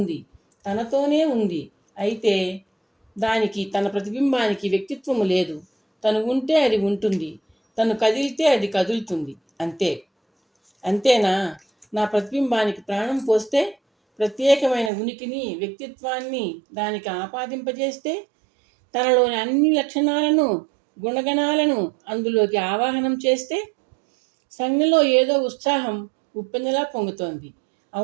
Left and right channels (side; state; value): left; drops out; at 14.9 s